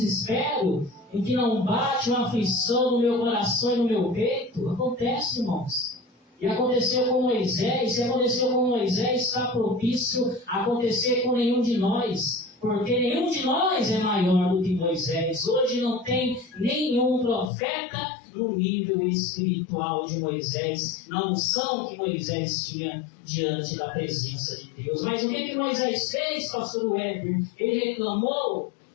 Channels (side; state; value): right; drops out; at 17.5 s